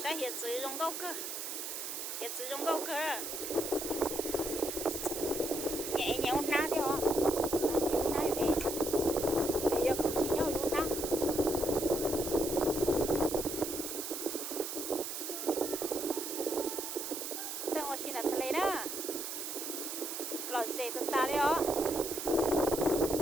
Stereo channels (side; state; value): right; noise; hiss, 5 dB below the sound